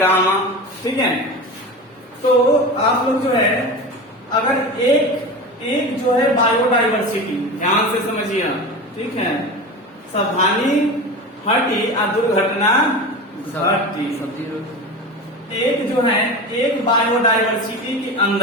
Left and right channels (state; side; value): normal; both; correlation 0.29